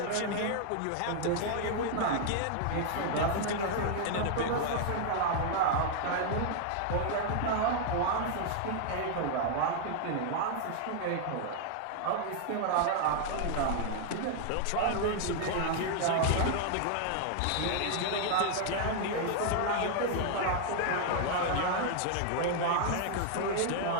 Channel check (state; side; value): different; both; correlation 0.00